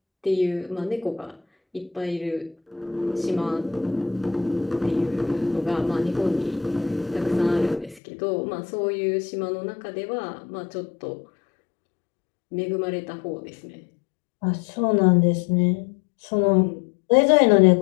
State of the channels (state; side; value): drops out; right; at 8.0 s